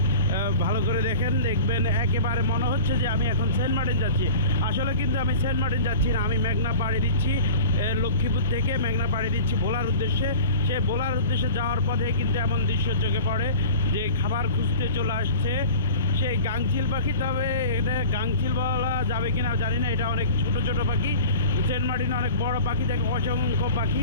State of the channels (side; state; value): both; inverted; correlation -0.39